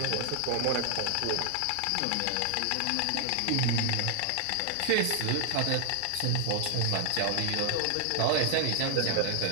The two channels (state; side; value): different; both; correlation 0.00